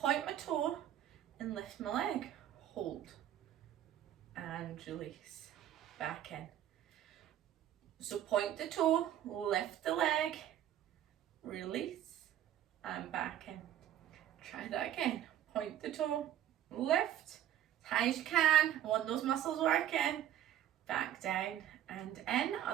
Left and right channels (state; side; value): quieter; left; 11.7 dB